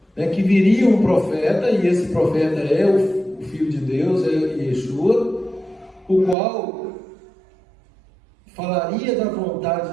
Que viria um profeta, e esse profeta é o Filho de Deus, é Yeshua, o qual falaria da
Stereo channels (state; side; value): drops out; left; at 6.4 s